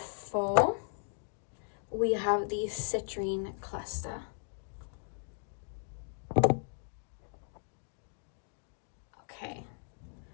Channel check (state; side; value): silent; right; 54 dB below the other